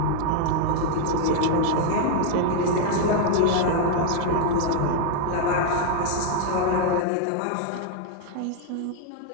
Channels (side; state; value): both; different; correlation 0.00